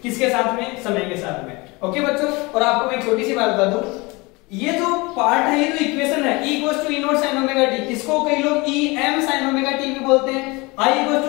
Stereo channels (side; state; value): right; quieter; 25.0 dB